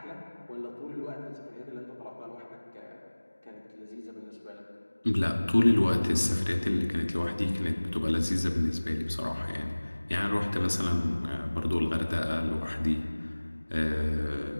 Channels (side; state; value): both; inverted; correlation -1.00